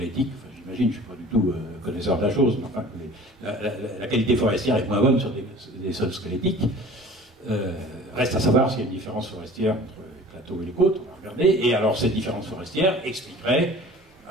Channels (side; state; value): both; normal; correlation 0.44